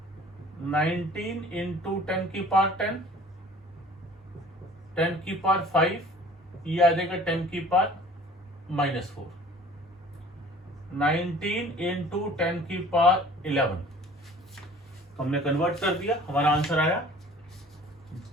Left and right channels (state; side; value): normal; both; correlation 0.49